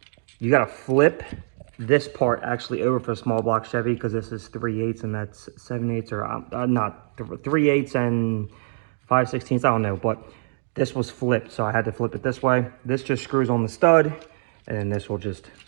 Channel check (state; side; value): silent; left; digital silence